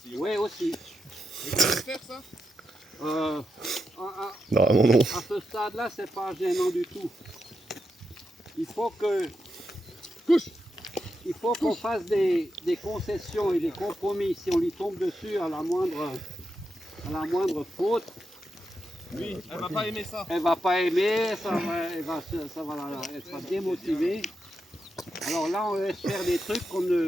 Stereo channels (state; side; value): normal; both; correlation 0.86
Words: Oui, aussi. Mais tu peux faire ça? Non, non. À ce stade-là, c'est pas gênant du tout. Il faut que... Couche! Il faut qu'on fasse des concessions et des compromis. Si on lui tombe dessus à la moindre faute, Oui, elle va pas aimer ça. elle va pas aimer, elle sera démotivée. Alors là, on laisse faire des trucs qu'on